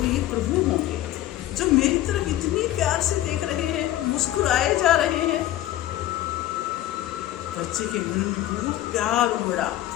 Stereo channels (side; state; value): right; quieter; 14.0 dB